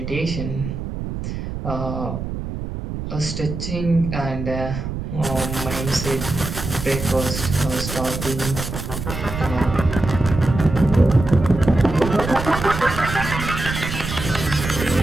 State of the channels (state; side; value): noise; right; rumble, 6 dB below the sound